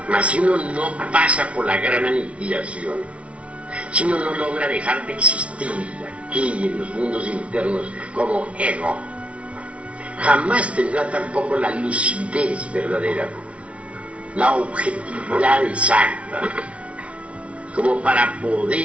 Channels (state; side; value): late; left; 0.062 ms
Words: Mas si uno no pasa por la gran aniquilación, si uno no logra dejar de existir aquí en los mundos internos como ego, jamás tendrá tampoco la lucidez verdadera, la objetividad exacta, como para